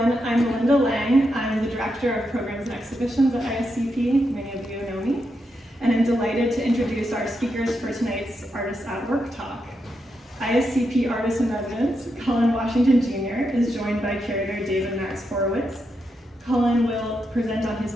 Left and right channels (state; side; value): normal; both; correlation 0.84